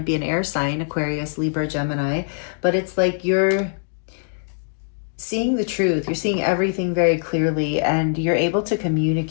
be an air sign, Aquarius, Libra, Gemini. But it's like you're seeing the truth. You're seeing everything very clearly, and you're able to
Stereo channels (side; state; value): right; silent; digital silence